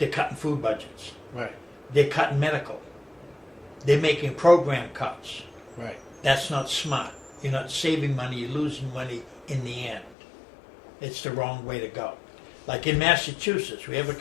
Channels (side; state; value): right; drops out; at 10.2 s